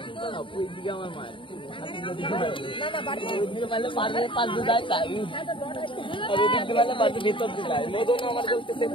ওই দিকে আমার মার না না বাড়ি দিকে মানে পারে পাঁচ দু যায় তাই আর ওই দিকে মানে পাঁচ ভিতর দিয়ে যায় মদন আমার বলতে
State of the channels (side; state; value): right; late; 0.25 ms